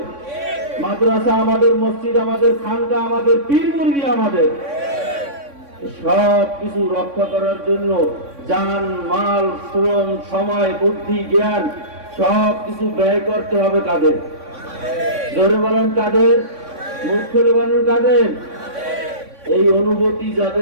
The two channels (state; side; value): late; left; 3.6 ms